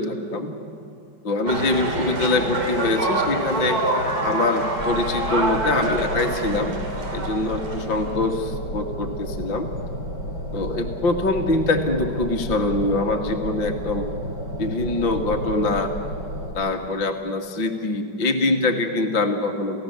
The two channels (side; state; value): right; late; 5.2 ms